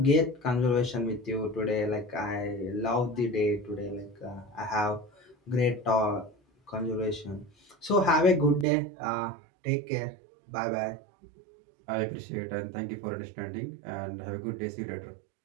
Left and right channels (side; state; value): left; drops out; at 8.7 s